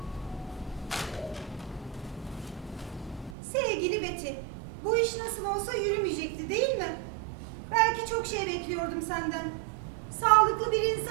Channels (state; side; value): drops out; left; at 3.4 s